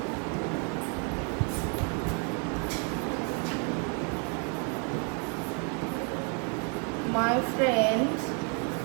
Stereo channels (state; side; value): quieter; left; 36.1 dB